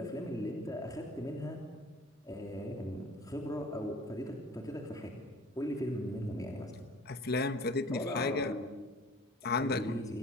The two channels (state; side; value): normal; both; correlation 0.46